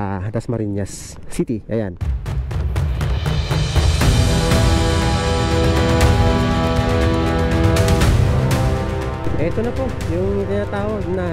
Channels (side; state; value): both; identical; correlation 1.00